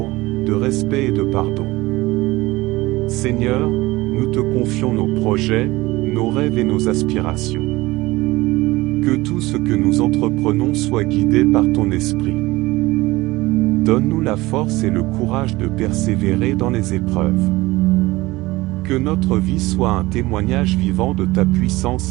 de respect et de pardon. Seigneur, nous te confions nos projets, nos rêves et nos aspirations. Que tout ce que nous entreprenons soit guidé par ton esprit. Donne-nous la force et le courage de persévérer dans les épreuves. Que notre vie soit un témoignage vivant de ta puissance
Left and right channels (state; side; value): quieter; left; 19.9 dB